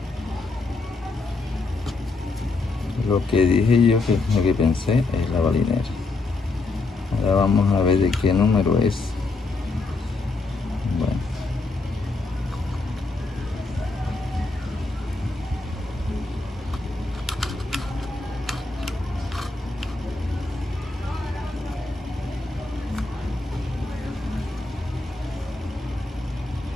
Lo que dije yo, lo que pensé es la balinera. Ahora vamos a ver de qué número es. Bueno.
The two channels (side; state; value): right; quieter; 3.5 dB